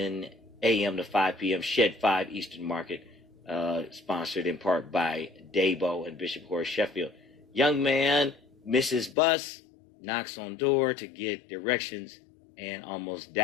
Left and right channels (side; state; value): right; drops out; at 9.2 s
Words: a.m. to 5 p.m. Shed 5 Eastern Market, sponsored in part by Dabo and Bishop Horace Sheffield. Young man misses bus, knocks on door to get directions, and almost